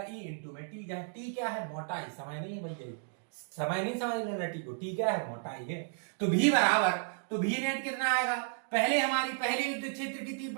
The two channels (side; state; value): left; silent; digital silence